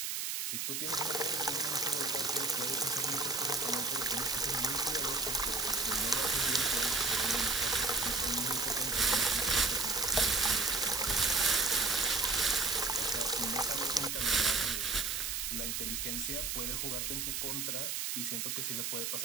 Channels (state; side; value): noise; right; hiss, 1 dB below the sound